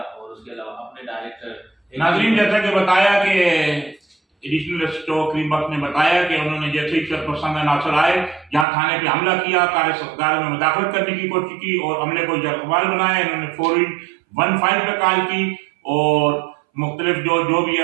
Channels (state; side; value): drops out; left; at 8.7 s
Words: उसके अलावा अपने डायरेक्टर। नाजरीन, जैसा कि बताया कि एडिशनल SHO करीम बख्श ने बताया कि उन्होंने जैसे ही सरपंच नासर आए, जहां थाने पे हमला किया, कार्य सरकार में मुदाखलत करने की कोशिश की और हमले को जरकबाल बनाया। इन्होंने फौरी 15 पे कॉल की और मुख्तलिफ जो भी है